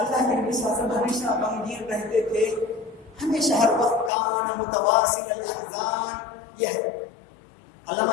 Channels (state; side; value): drops out; right; at 4.1 s